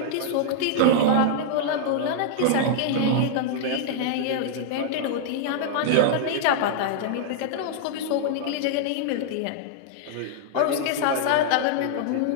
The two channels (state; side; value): different; both; correlation -0.01